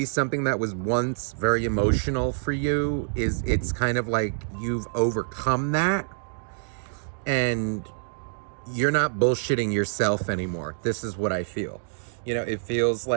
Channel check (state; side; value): silent; left; digital silence